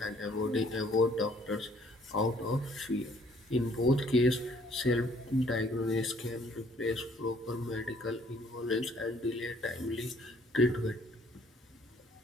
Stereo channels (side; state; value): both; normal; correlation 0.61